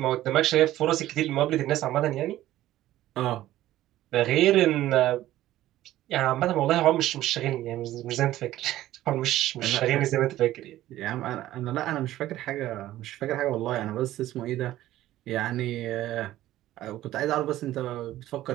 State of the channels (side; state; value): left; quieter; 14.5 dB